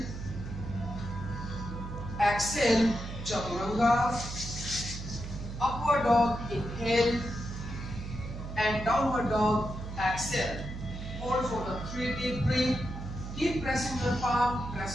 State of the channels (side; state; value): right; noise; hum, 8 dB below the sound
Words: Exhale, chaturanga. Upward dog, inhale. And downward dog, exhale. Hold for the 3 deep breath. Keep pressing your palm,